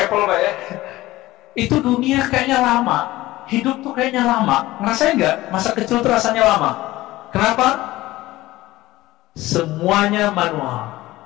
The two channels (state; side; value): quieter; right; 17.5 dB